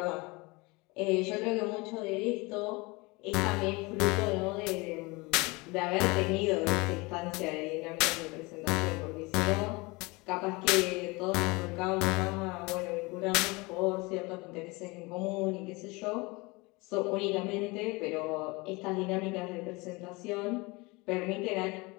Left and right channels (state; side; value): quieter; right; 25.1 dB